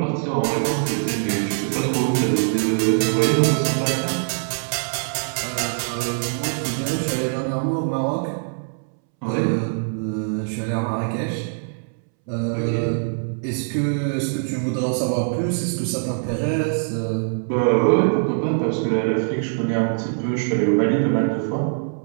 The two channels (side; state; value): left; silent; 64 dB below the other